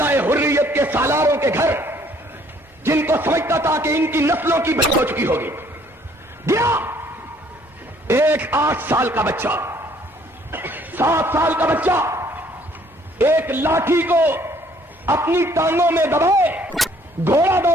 حریت کے سالاروں کے گھر، جن کو سمجھتا تھا کہ ان کی نسلوں کی بچت ہو چکی ہوگی، گیا ایک 8 سال کا بچہ، 7 سال کا بچہ ایک لاٹھی کو اپنی ٹانگوں میں دبائے گھوڑا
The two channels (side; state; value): both; normal; correlation 0.61